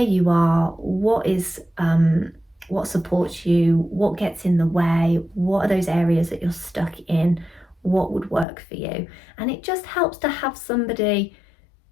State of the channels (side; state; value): right; drops out; at 8.5 s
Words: are, what supports you, what gets in the way, what are those areas that you're stuck in, what would work for you. And it just helps to have somebody